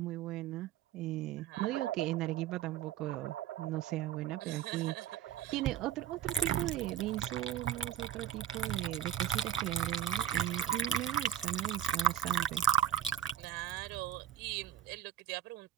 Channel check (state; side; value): quieter; left; 10.5 dB